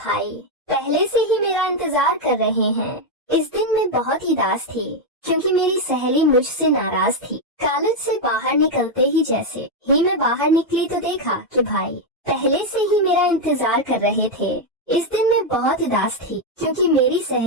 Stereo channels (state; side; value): normal; both; correlation 0.03